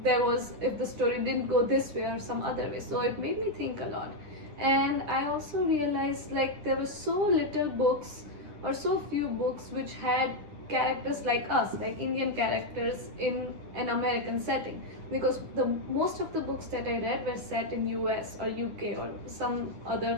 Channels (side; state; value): left; late; 10 ms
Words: the story didn't go this way or some other way? So it made me think a lot. And I also realized, like, there were so little books, or so few books, which had characters like us, like Indian characters in an American setting, because the most of the books that I read were set in US or UK or some